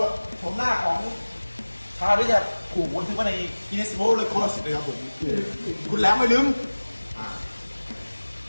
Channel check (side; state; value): both; inverted; correlation -1.00